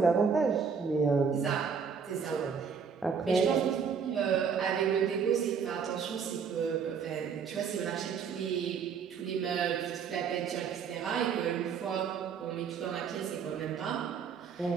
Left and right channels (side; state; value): left; quieter; 6.4 dB